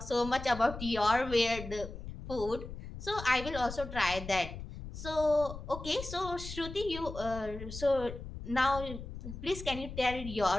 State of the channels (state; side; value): noise; left; rumble, 10 dB below the sound